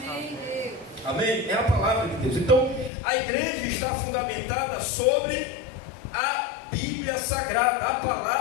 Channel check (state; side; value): drops out; right; at 2.9 s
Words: Deus. Amém? É a palavra de Deus. Então, a igreja está fundamentada sobre a Bíblia Sagrada, a